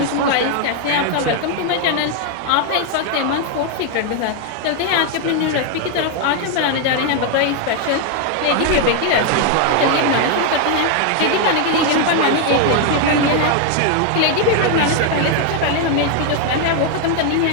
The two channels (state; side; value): different; both; correlation 0.00